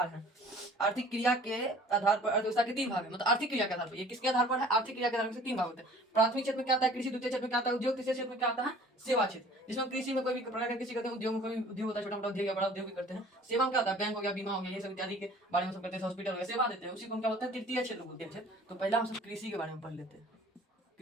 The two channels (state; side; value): normal; both; correlation 0.50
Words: हैं, आर्थिक क्रिया के आधार पर अर्थव्यवस्था के तीन भाग है। मतलब आर्थिक क्रिया के आधार पर, ये किसके आधार पर है, आर्थिक क्रिया के आधार पर तीन भाग होते हैं। प्राथमिक क्षेत्र में क्या आता है, कृषि। द्वितीय क्षेत्र में क्या आता है, उद्योग। तीसरे क्षेत्र में क्या आता है, सेवा क्षेत्र। जिसमें कृषि में कोई भी प्रकार का कृषि करते हैं, उद्योग में कोई उद्योग होता है, छोटा मोटा उद्योग या बड़ा उद्योग भी करते हैं। सेवा में क्या होता है, बैंक हो गया, बीमा हो गया, ये सब इत्यादि के बारे में सब करते हैं। हॉस्पिटल हो गया, सेवा देते हैं, उसी को हम क्या बोलते हैं, तृतीय क्षेत्र बोलते हैं। तो पहला हम सब कृषि के बारे में पढ़ लेते हैं।